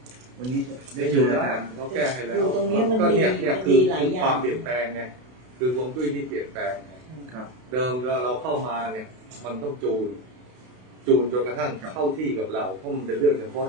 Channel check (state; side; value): late; left; 32 ms